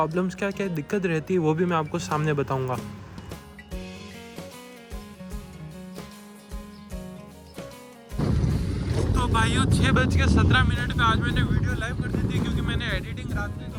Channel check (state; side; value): identical; both; correlation 1.00